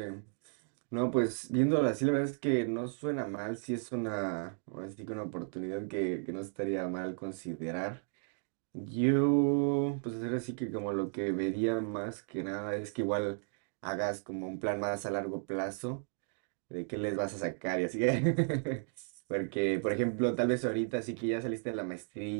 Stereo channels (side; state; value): left; silent; 55 dB below the other